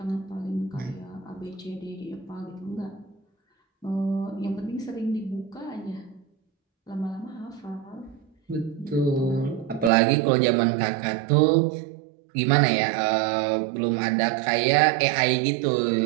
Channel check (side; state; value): left; drops out; at 9.9 s